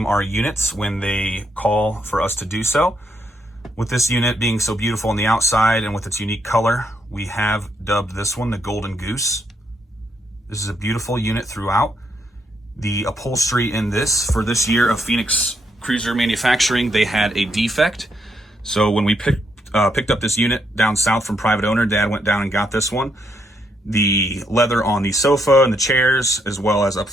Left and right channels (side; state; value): both; normal; correlation 0.76